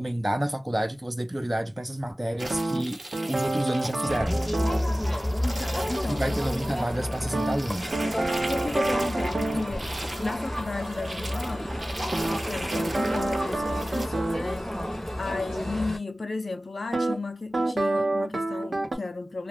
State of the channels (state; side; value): normal; both; correlation 0.96